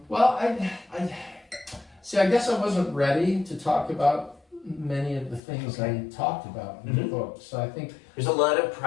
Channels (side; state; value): right; drops out; at 5.4 s